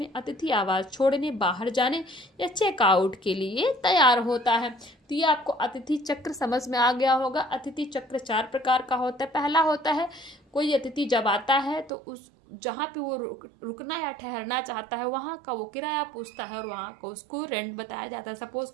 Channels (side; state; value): left; drops out; at 11.9 s